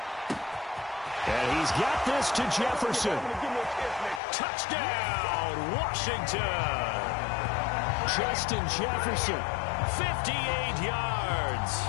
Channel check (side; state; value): right; drops out; at 4.2 s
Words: And he's got this to Jefferson. Touchdown, Washington. Justin Jefferson, 58 yards.